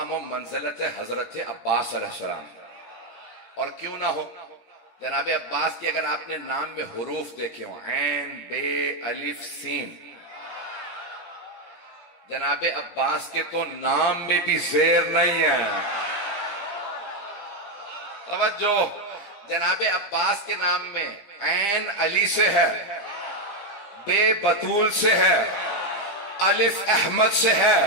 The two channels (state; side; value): late; right; 17 ms